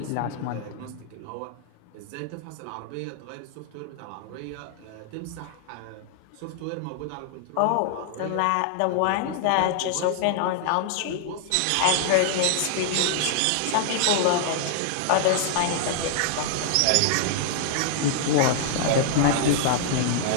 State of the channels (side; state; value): both; different; correlation -0.01